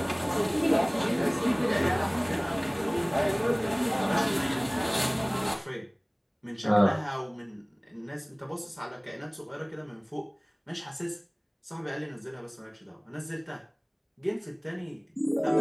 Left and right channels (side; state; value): both; identical; correlation 1.00